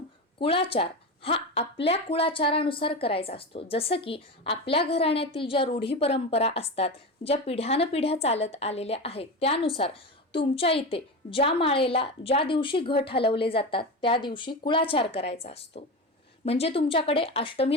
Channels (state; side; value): normal; both; correlation 0.22